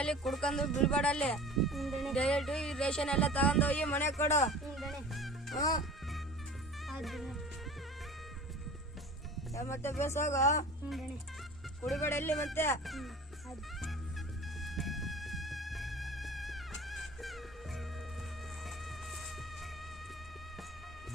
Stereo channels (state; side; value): normal; both; correlation 0.40